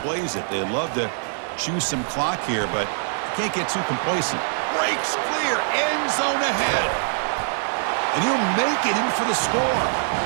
plays it. They love to choose some clock here, but can't get too complacent. Breaks clear, end zone ahead. And he'll make it in for the score.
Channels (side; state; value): left; silent; digital silence